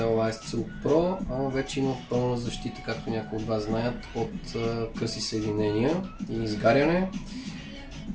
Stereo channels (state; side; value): identical; both; correlation 1.00